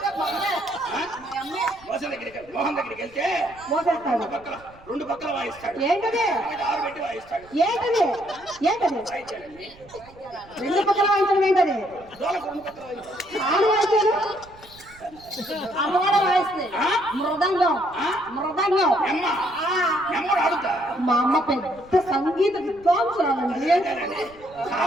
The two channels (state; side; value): noise; right; rumble, 24 dB below the sound